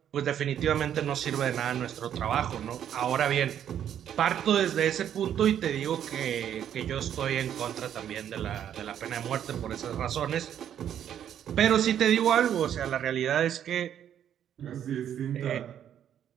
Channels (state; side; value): quieter; left; 9.8 dB